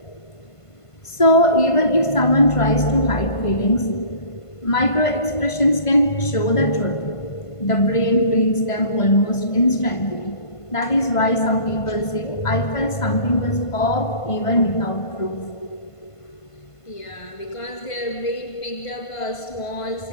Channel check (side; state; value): right; late; 1.5 ms